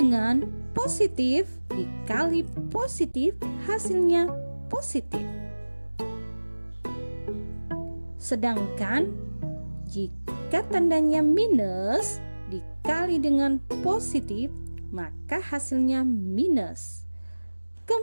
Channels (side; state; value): both; inverted; correlation -1.00